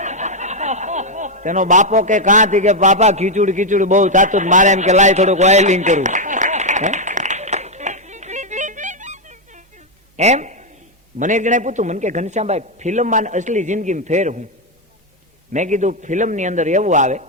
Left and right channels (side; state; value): both; normal; correlation 0.02